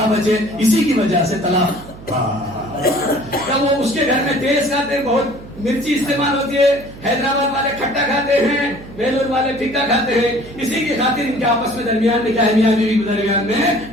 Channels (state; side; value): noise; right; hum, 17 dB below the sound